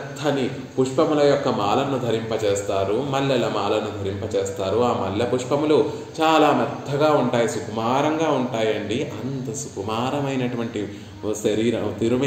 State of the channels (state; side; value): identical; both; correlation 1.00